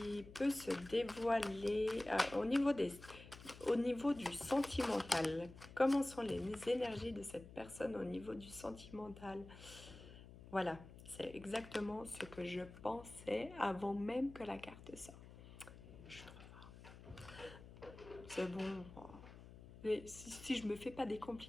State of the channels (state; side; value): noise; left; hum, 16 dB below the sound